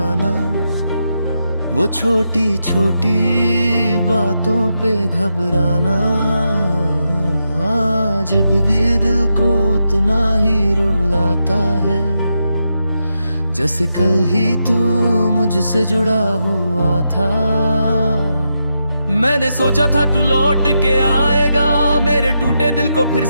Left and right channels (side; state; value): both; inverted; correlation -0.85